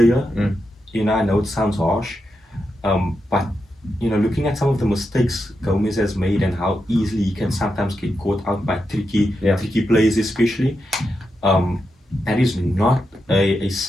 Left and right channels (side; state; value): both; normal; correlation 0.86